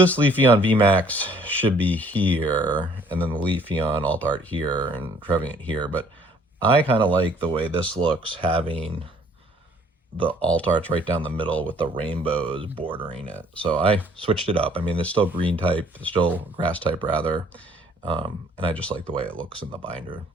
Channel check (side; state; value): both; normal; correlation 0.59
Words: Leafeon VMAX should be here, and then the Leafeon alt art here, and Trevenant here. But I kind of like the way this looks, having the alt art's right down the middle with the rainbows bordering it. So I switched it up. I mean, there's still green type, there's still grass type rather. And I just like the way it looks in the binder